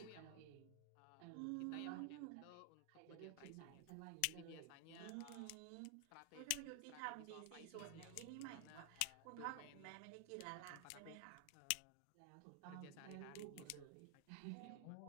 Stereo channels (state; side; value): different; both; correlation 0.00